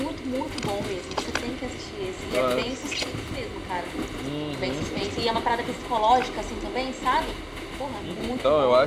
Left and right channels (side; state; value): both; identical; correlation 1.00